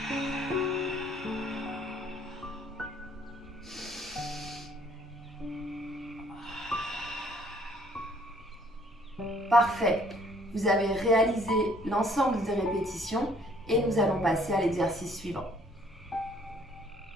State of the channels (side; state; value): both; normal; correlation 0.60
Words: Parfait. Vous avez réalisé l'ensemble des répétitions et nous allons passer à l'exercice suivant.